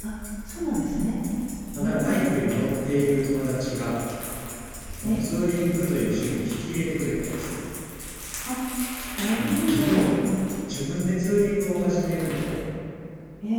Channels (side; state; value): both; identical; correlation 1.00